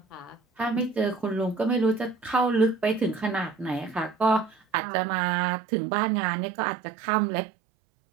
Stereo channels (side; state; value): left; drops out; at 4.5 s